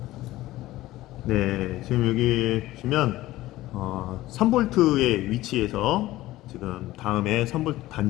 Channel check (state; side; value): quieter; right; 16.6 dB